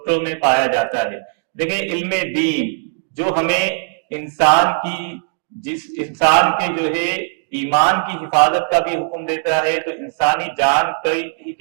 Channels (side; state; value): left; silent; digital silence